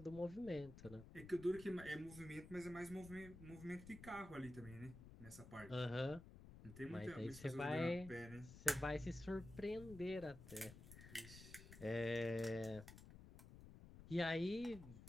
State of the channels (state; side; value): noise; left; rumble, 14 dB below the sound